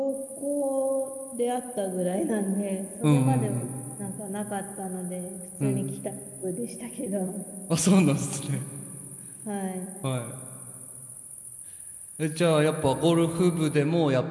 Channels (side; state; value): both; identical; correlation 1.00